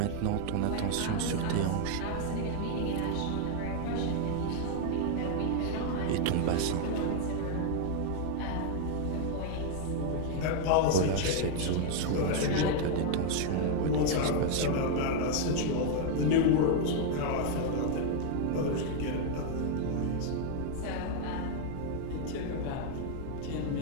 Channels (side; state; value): both; different; correlation 0.00